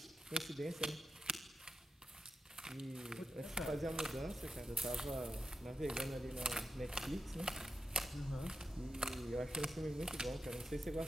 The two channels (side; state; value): both; normal; correlation 0.90